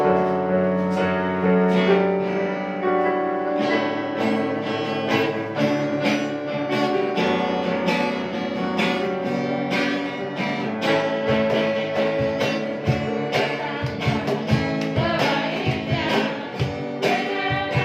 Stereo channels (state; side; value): identical; both; correlation 1.00